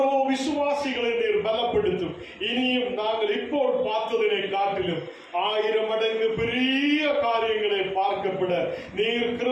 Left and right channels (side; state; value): both; identical; correlation 1.00